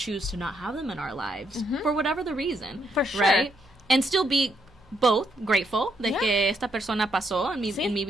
to not have them in our lives for whatever the reason. For sure. Right? And still be both grateful de que esta persona pasó en mi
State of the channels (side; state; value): both; normal; correlation 0.75